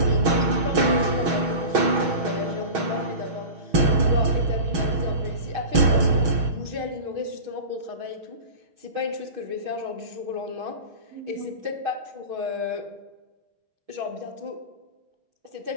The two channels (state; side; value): late; left; 6.3 ms